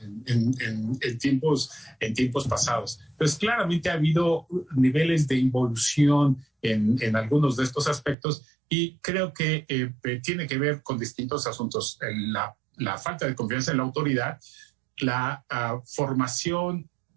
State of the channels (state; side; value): drops out; left; at 8.2 s